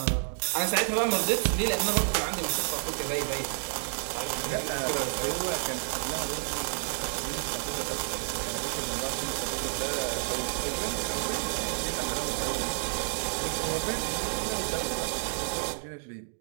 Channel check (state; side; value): silent; left; 58 dB below the other